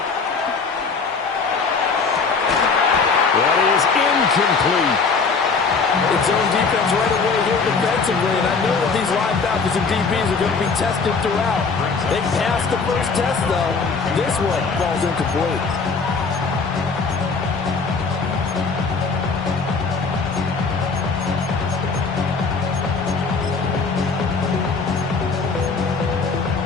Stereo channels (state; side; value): quieter; right; 4.7 dB